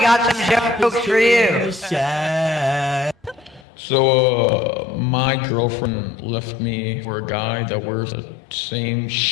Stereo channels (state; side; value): drops out; right; at 3.7 s